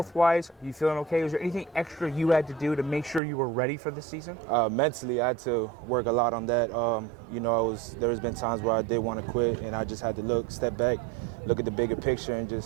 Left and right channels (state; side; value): drops out; left; at 3.2 s